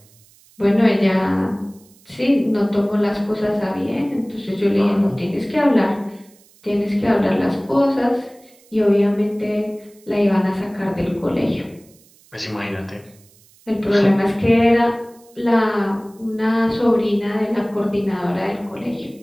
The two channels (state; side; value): noise; right; hiss, 29 dB below the sound